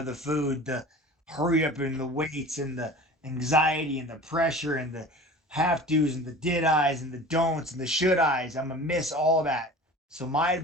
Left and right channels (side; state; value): both; normal; correlation 0.40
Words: the food, the hurry up in the weights, and the anxiety and the pressure and the have to's and the did I's and the don'ts and the should I's. I'm gonna miss all that. So my